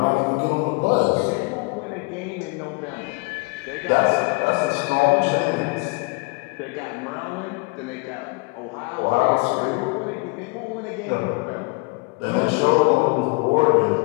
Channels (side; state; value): right; quieter; 28.8 dB